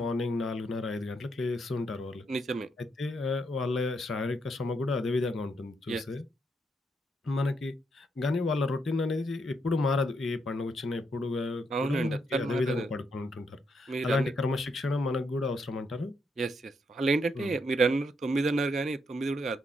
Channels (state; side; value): normal; both; correlation 0.78